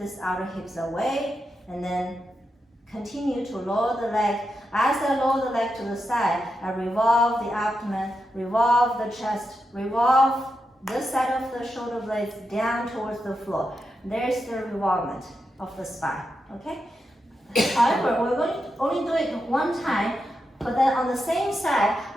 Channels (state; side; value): normal; both; correlation 0.86